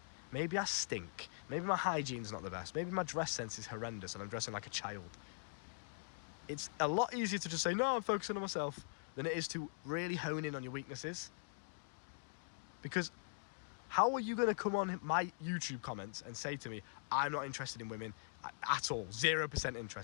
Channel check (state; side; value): silent; right; digital silence